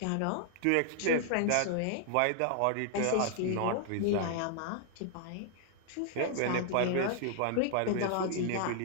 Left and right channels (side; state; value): both; different; correlation 0.00